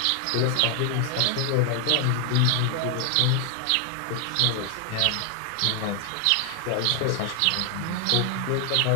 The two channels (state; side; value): different; both; correlation 0.00